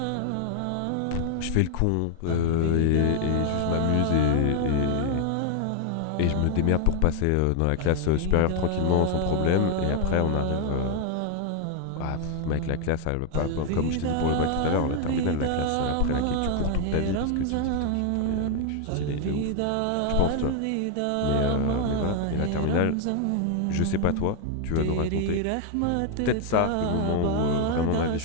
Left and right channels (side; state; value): both; different; correlation 0.00